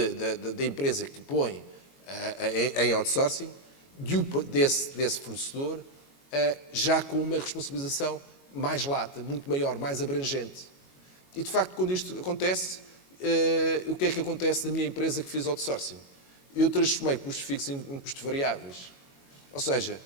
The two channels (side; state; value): right; late; 22 ms